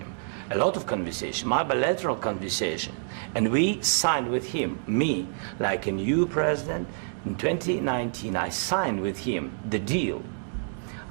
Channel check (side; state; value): left; silent; digital silence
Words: a lot of conversation, my bilateral conversation, and we signed with him, me, like a new president. In 2019, I signed with him the deal.